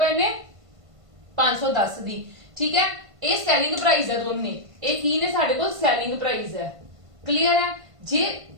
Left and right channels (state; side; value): late; left; 1.5 ms